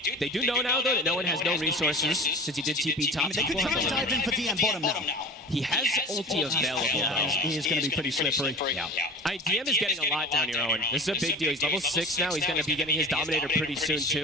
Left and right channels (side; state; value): both; normal; correlation 0.35